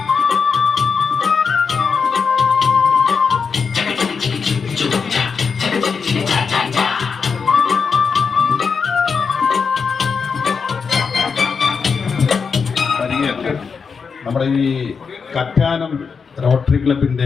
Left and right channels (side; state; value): right; quieter; 5.6 dB